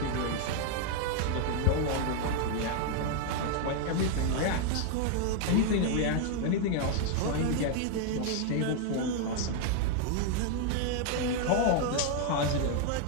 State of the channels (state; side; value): different; both; correlation 0.00